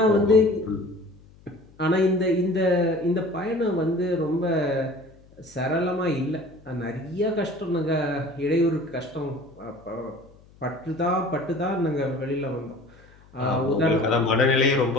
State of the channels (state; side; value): noise; left; hum, 26 dB below the sound